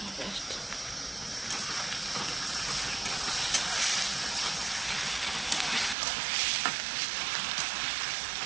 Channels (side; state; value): left; drops out; at 6.0 s